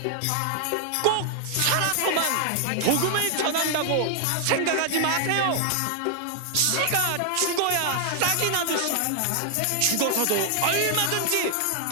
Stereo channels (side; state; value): both; different; correlation 0.00